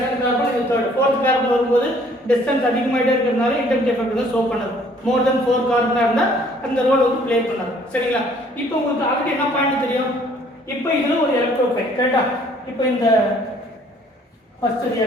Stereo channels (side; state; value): both; normal; correlation 0.59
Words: கார்பன், இது தேர்ட். ஃபோர்த் கார்பன் வரும்போது டிஸ்டன்ஸ் அதிகமாயிட்டே இருக்கிறதுனால இண்டக்டிவ் எஃபெக்ட் வந்து ஷோ பண்ணாது. மோர் தென் 4 கார்பனா இருந்தா அந்த ரோல் வந்து ப்ளே பண்ணாது. சரிங்களா? இப்போ உங்களுக்கு ஆல்ரெடி என்ன பாயிண்ட் தெரியும்? இப்போ இதுல ஒரு எலக்ட்ரோஃபைல், கரெக்டா? இப்போ இந்த first